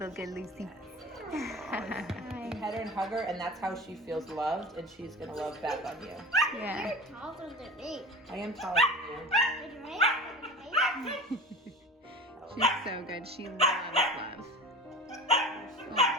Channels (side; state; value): both; normal; correlation 0.34